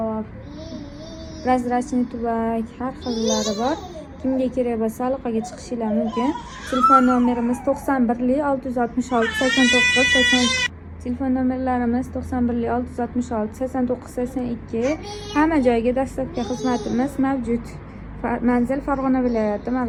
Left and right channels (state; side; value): identical; both; correlation 1.00